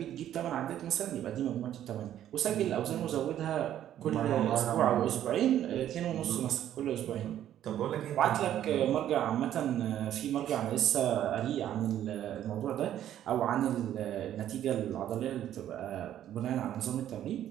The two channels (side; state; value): left; quieter; 11.4 dB